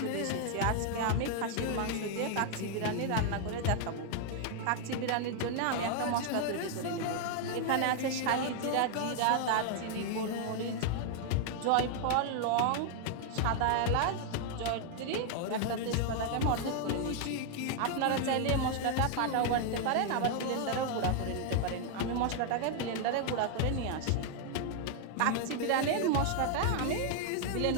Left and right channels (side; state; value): both; different; correlation 0.00